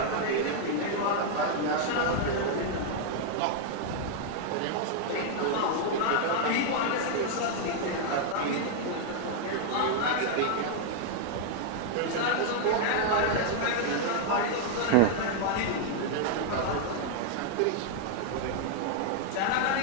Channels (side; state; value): both; different; correlation 0.00